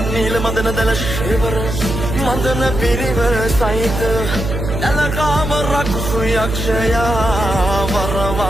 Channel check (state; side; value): noise; right; hum, 4 dB below the sound